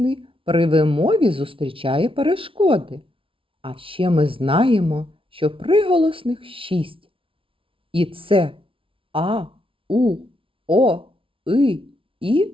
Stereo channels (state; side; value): late; left; 0.26 ms